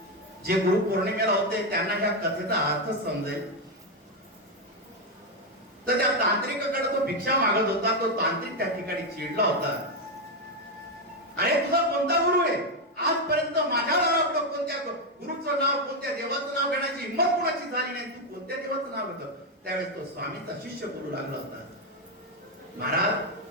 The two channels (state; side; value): normal; both; correlation 0.05